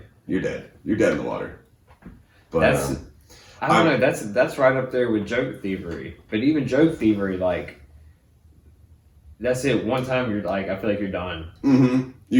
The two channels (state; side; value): identical; both; correlation 1.00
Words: you're dead. You're dead in the water. But I don't know. That's right up there with joke thievery. But even joke thievery, like, that's it. One time you're like, I feel like you're done.